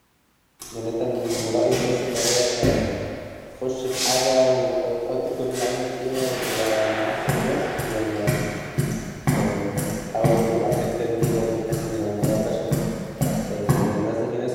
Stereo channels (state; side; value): identical; both; correlation 1.00